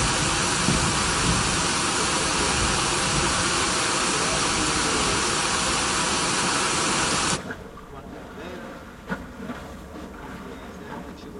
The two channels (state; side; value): identical; both; correlation 1.00